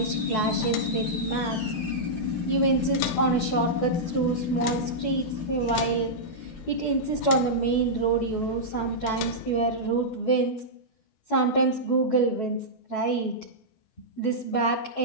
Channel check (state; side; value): late; right; 12 ms